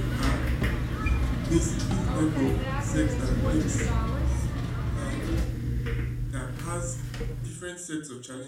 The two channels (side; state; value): both; identical; correlation 1.00